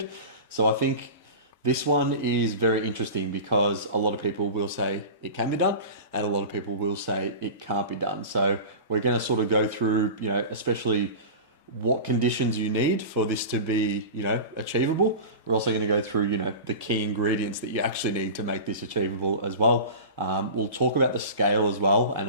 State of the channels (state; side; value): inverted; both; correlation -0.31